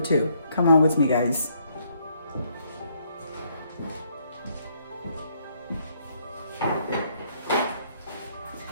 Come on with me, guys.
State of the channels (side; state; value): both; inverted; correlation -0.70